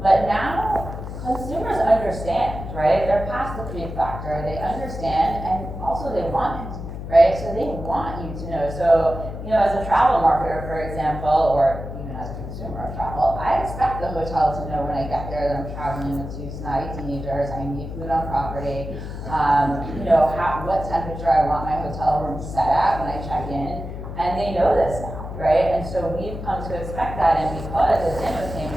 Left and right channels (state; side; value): noise; left; hum, 8 dB below the sound